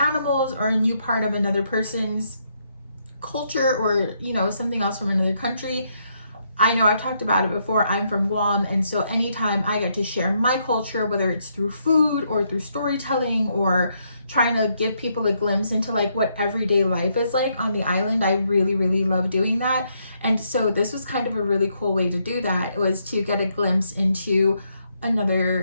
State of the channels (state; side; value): inverted; both; correlation -0.76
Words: or a new part of another person's culture, or you know, something else from another country. I know I've talked about it before, I'm from Guam, and so anytime I get to share my culture, whether it's through food or through storytelling or trying to give people a glimpse into like what everyday life is like on the island, I really, really love doing that. And so this was kind of a really cool way to do that. It was to get a glimpse into